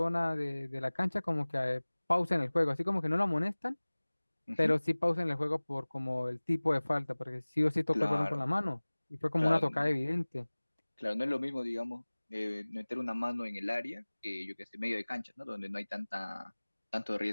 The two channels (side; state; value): both; inverted; correlation -1.00